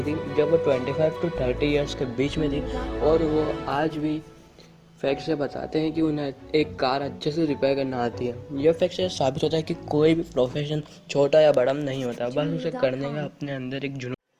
थी जब वो 25 to 30 ईयर्स के बीच में थी और वो आज भी फैक्ट से बताते हैं कि उन्हें एक कार अच्छे से रिपेयर करना आती है। यह फैक्ट से साबित होता है कि कोई भी प्रोफेशन छोटा या बड़ा नहीं होता, बस उसे करने का अपने अंदर एक जुनून।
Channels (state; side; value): identical; both; correlation 1.00